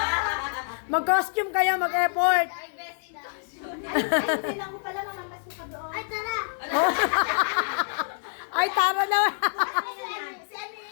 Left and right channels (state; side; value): silent; right; digital silence